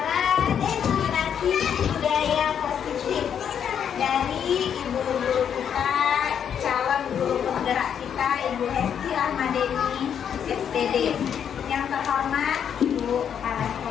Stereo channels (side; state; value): right; quieter; 8.4 dB